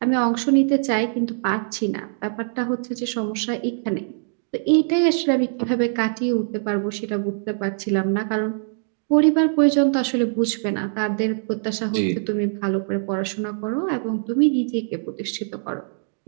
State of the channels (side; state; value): left; silent; digital silence